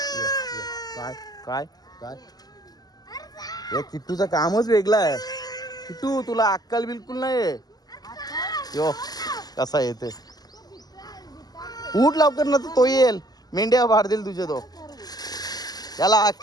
काय काय काय हे किट्टूचं कामच वेगळं आहे. किट्टू तुला अक्कल बिलकुल नाही. यो कसा येते, उठ लवकर ना तो येईल, मेंढ्या भार देईल तुझे तो. याला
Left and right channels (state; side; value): late; right; 0.19 ms